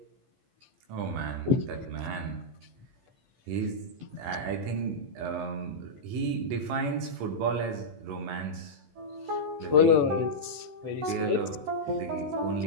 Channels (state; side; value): late; left; 13 ms